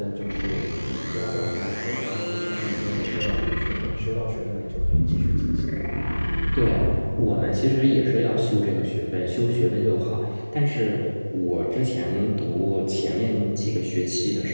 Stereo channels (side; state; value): both; inverted; correlation -1.00